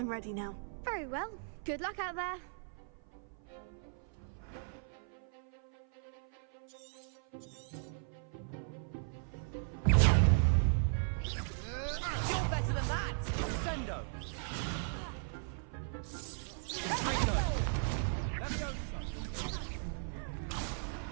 ready now. Very well. Good luck out there. You're better than that! Sendo!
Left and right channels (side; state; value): left; silent; 53 dB below the other